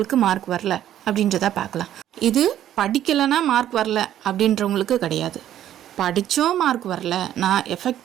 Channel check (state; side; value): quieter; left; 11.6 dB